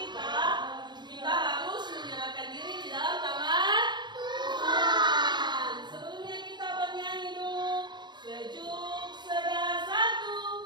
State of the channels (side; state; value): left; late; 0.21 ms